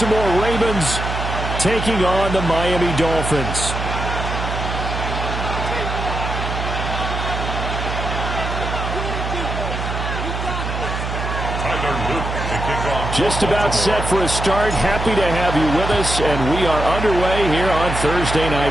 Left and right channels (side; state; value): right; noise; hum, 4 dB below the sound